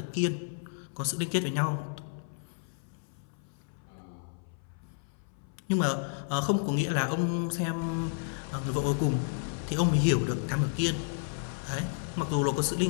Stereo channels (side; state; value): right; silent; 57 dB below the other